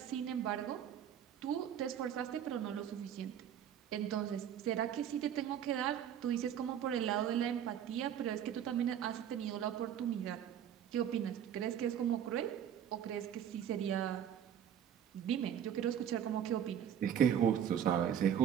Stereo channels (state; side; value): quieter; left; 9.4 dB